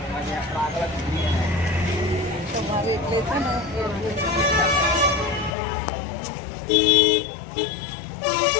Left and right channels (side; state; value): right; drops out; at 5.5 s